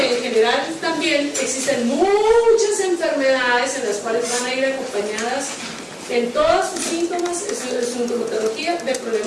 en general también existen muchas enfermedades en las cuales van a ir acompañadas en todos sus síntomas, es sintomatología de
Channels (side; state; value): both; identical; correlation 1.00